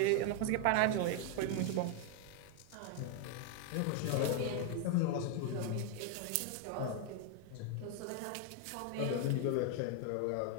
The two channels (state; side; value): different; both; correlation 0.01